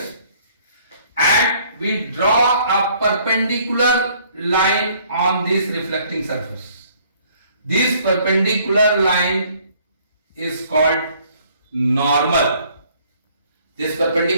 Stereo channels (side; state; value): both; inverted; correlation -0.61